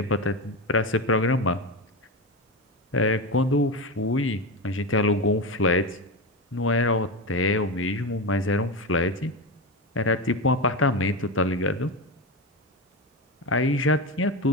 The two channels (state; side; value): normal; both; correlation 0.18